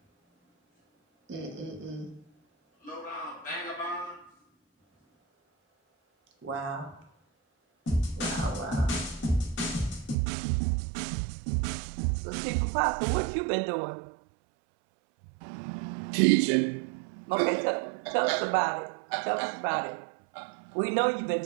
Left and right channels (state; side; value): drops out; left; at 10.2 s